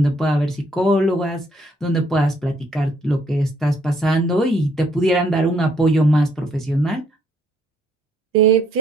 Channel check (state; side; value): normal; both; correlation 0.68